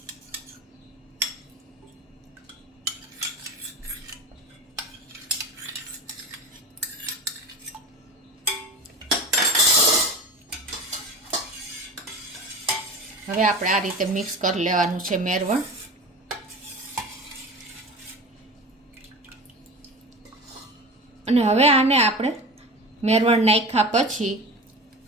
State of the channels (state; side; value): normal; both; correlation 0.32